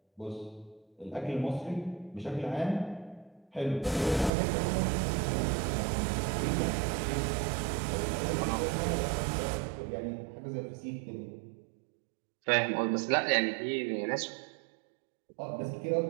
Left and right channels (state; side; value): drops out; left; at 4.3 s